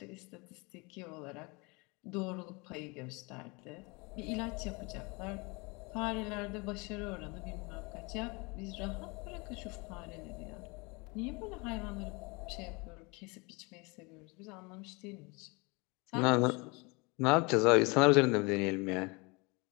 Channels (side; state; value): right; quieter; 27.8 dB